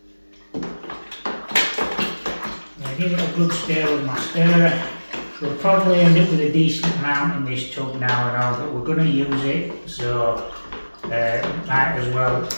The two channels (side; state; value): both; inverted; correlation -1.00